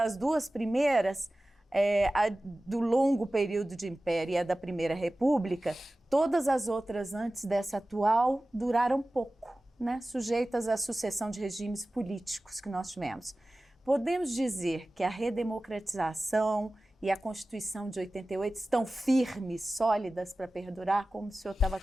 2 primeiras, a do longo período de império e a da Primeira República, todas as outras antes dessa atual duraram pouco, né, sujeitas à sucessão de regimes políticos que nós tivemos. Podemos dizer que a redemocratização e a Constituição de 88 estão firmes, sólidas para perdurar, como o senhor estava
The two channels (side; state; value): both; normal; correlation 0.96